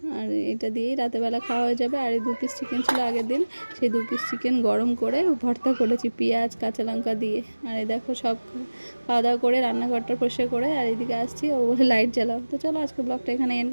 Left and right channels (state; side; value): inverted; both; correlation -1.00